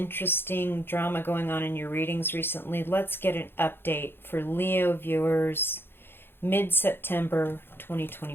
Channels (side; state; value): right; late; 0.10 ms